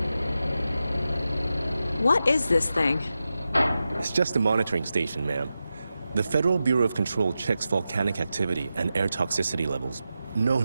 What is this thing? It's just a monitoring station, ma'am. The Federal Bureau of Control checks volcanic activity and air toxicity levels. No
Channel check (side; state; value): both; inverted; correlation -0.91